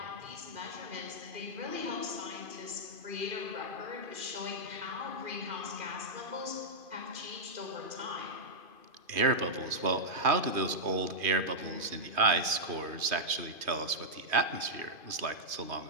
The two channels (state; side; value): late; left; 2.5 ms